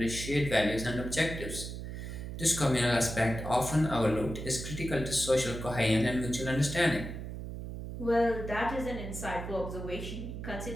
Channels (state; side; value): noise; right; hum, 7 dB below the sound